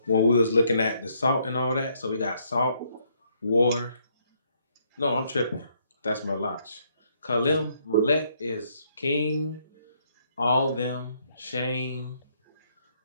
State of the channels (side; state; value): both; inverted; correlation -0.71